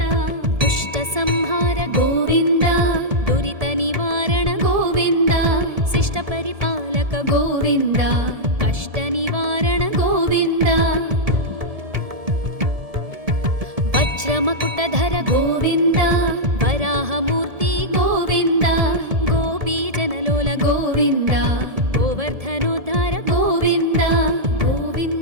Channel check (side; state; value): left; late; 1.7 ms